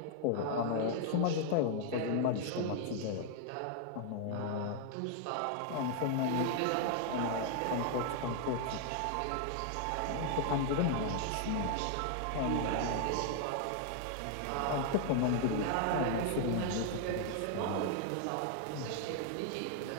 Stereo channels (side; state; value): both; different; correlation 0.00